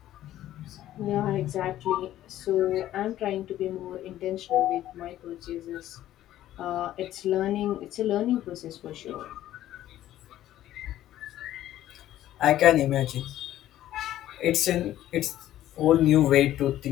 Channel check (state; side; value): quieter; right; 13.2 dB